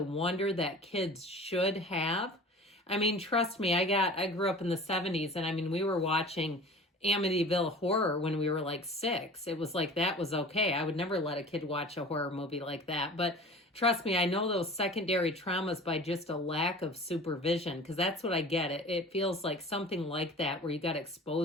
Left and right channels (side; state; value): both; normal; correlation 0.41